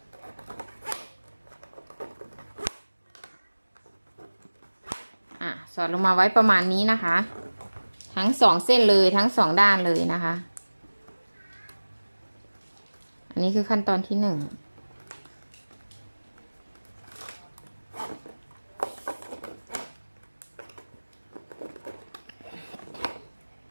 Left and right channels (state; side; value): inverted; both; correlation -1.00